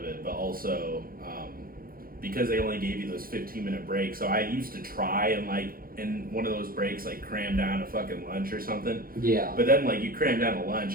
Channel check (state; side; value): late; left; 0.42 ms